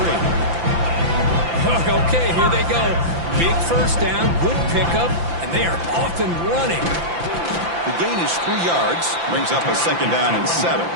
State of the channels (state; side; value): late; left; 5.9 ms